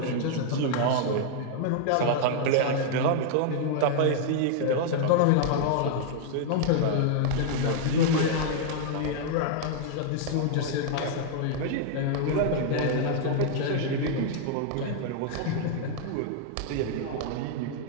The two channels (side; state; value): both; different; correlation -0.01